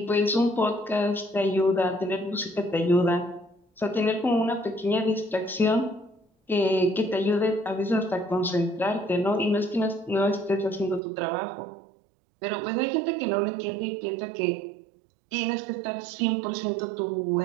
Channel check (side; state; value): left; drops out; at 11.0 s